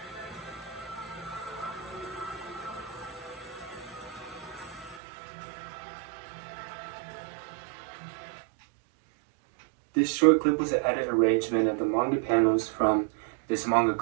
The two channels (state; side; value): drops out; left; at 5.0 s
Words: This short clip was an edit arrangement of the manga panels from this manga